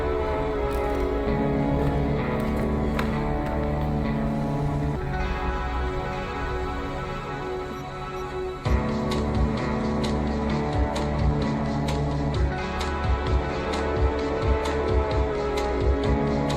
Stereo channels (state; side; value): identical; both; correlation 1.00